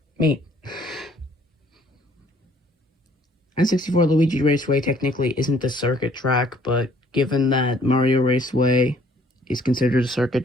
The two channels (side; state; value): both; normal; correlation 0.60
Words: Me. N64 Luigi Raceway technically isn't a circuit track, but given that Mario Raceway is considered a circuit